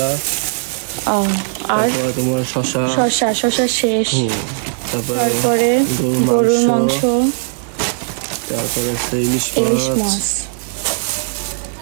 আর তোমার শসা শেষ, তারপরে গরুর মাংস, তারপরে আছে ইলিশ মাছ,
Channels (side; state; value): left; silent; digital silence